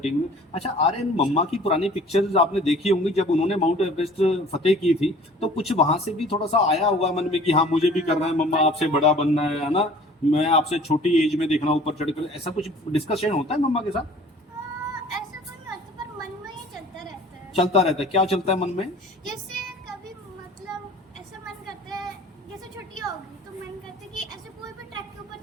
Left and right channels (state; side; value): normal; both; correlation 0.48